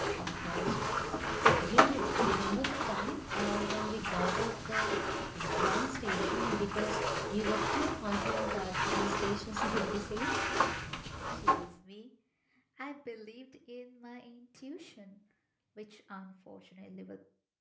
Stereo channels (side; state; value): both; identical; correlation 1.00